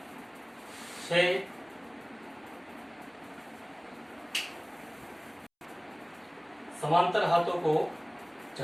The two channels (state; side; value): identical; both; correlation 1.00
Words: छः, समांतर हाथों को